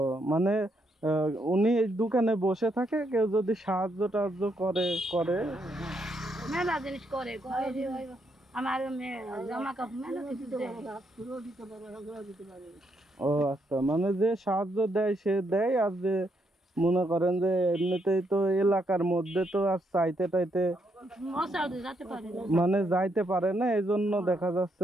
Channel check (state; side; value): normal; both; correlation 0.76